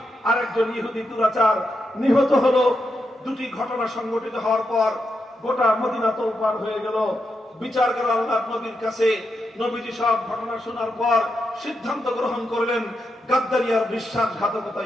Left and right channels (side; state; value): both; normal; correlation 0.84